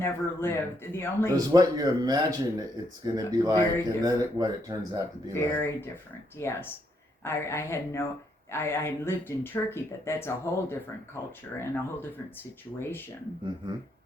lived. The only It was what you imagine it's going to be like, Very and then what it turns out to be like. very different. Yes, I had no. I lived in Turkey, but that's a whole different culture and a whole different situation. Mm-hmm.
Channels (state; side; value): normal; both; correlation 0.75